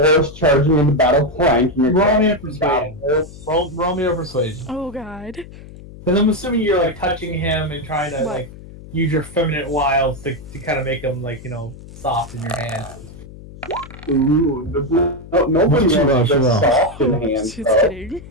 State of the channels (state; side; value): noise; left; hum, 17 dB below the sound